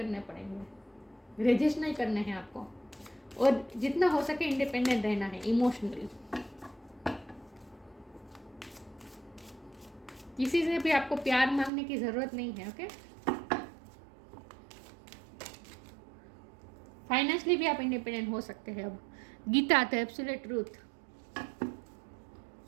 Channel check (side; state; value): left; drops out; at 11.7 s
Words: पड़ेंगे, रेजिस्ट नहीं करने हैं आपको, और जितना हो सके इंडिपेंडेंट रहना है इमोशनली। किसी से भी आपको प्यार मांगने की ज़रूरत नहीं है। ओके, फाइनेंशियली भी आप इंडिपेंडेंट हो सकते हैं अब। Gita the absolute truth.